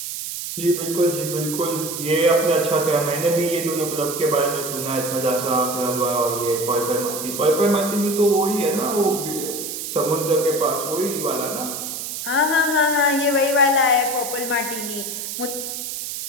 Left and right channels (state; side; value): noise; right; hiss, 6 dB below the sound